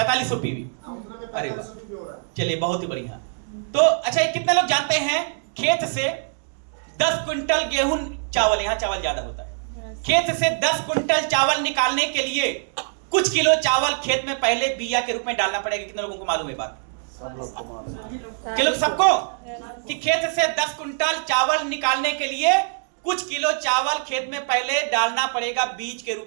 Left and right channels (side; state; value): left; silent; digital silence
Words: पीवी। अरे चलिए, बहुत ही बढ़िया। तो अच्छा, कितने लोग जानते हैं खेत से 10 क्विंटल गेहूं चावल, यहां चावल ज्यादा होता है, खेत से 10 क्विंटल चावल निकालने के लिए कुछ किलो चावल खेत में पहले बिया के रूप में डालना पड़ेगा? कितने लोगों को मालूम है बात? सबको? कि खेत से 10 क्विंटल चावल निकालने के लिए कुछ किलो चावल खेत में पहले डालना पड़ेगा बीज के